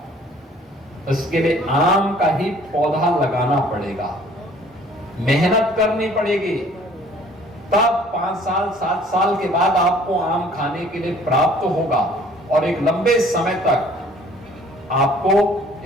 उसके लिए आम का ही पौधा लगाना पड़ेगा, मेहनत करनी पड़ेगी, तब 5 साल 7 साल के बाद आपको आम खाने के लिए प्राप्त होगा, और एक लंबे समय तक आपको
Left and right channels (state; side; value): normal; both; correlation 0.54